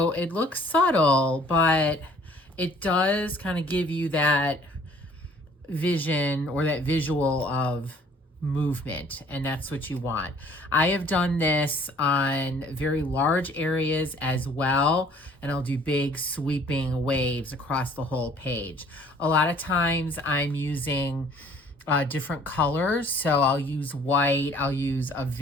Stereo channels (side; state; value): both; normal; correlation 0.56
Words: it looks subtle, but it does kind of give you that vision or that visual of movement, and that's what you want. I have done this on very large areas as well, and I'll do big sweeping waves across the whole page. A lot of times I'm using different colors, so I'll use white, I'll use a